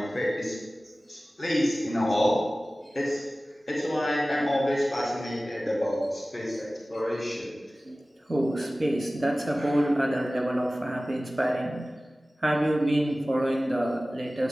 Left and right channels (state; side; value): normal; both; correlation 0.97